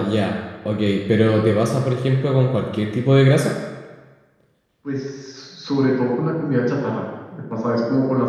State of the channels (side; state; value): both; identical; correlation 1.00